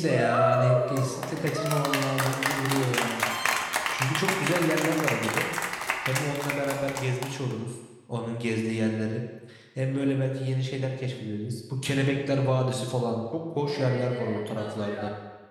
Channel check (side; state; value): both; identical; correlation 1.00